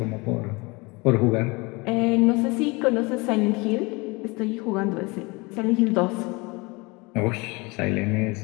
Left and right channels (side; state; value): right; quieter; 26.0 dB